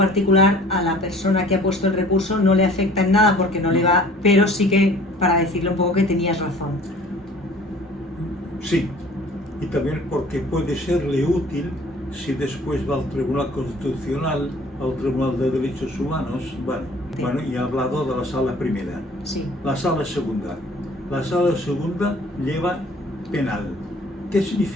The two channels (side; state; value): both; normal; correlation 0.50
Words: a la persona que ha puesto el recurso no le afecta en nada porque no le va, pero sí que para decirle un poco que tenías razón. Sí, y también porque puede serle útil si después va al Tribunal Constitucional, al Tribunal de Derechos Humanos. Bueno, y he hablado de la sala primera. Sí. La sala segunda. La sala segunda lleva penal. ¿Qué